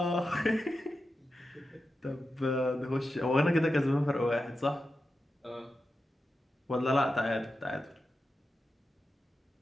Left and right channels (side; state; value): both; normal; correlation 0.90